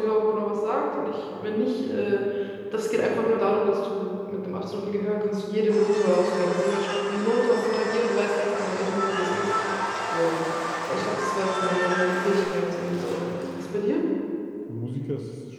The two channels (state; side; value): identical; both; correlation 1.00